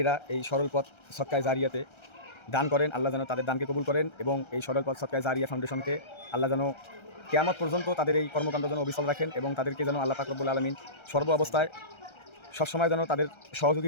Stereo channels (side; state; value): right; late; 1.3 ms